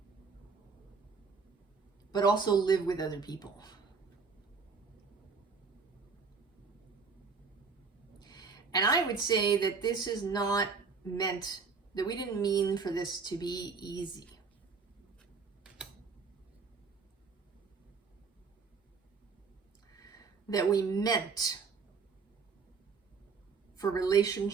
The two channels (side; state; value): left; quieter; 5.0 dB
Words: but also live with other people. And I would say that this is not meant, that we didn't mean for this to be easy. That we meant for